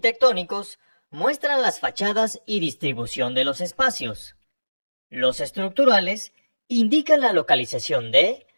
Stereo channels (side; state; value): both; inverted; correlation -1.00